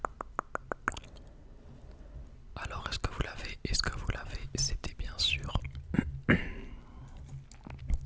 Alors, est-ce que vous l'avez? Est-ce que vous l'avez? C'était bien sûr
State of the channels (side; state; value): both; identical; correlation 1.00